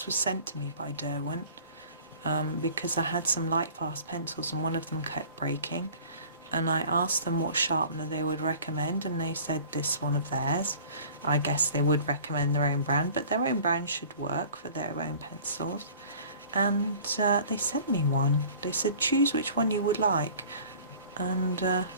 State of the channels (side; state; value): both; inverted; correlation -0.47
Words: was sent to me by Derwent because I had some light fast pencils and one of them kept breaking, and I asked them what sharpener they would recommend, and they said this one of theirs. I guess they would recommend their own brand, but their own brand should work for their own pencils. And they sent me one. They said choose which one you would like. And well,